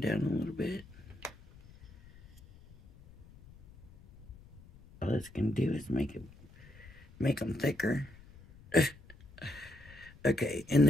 a little bit? All it's gonna do is make them thicker. Okay, and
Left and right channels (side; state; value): left; noise; rumble, 22 dB below the sound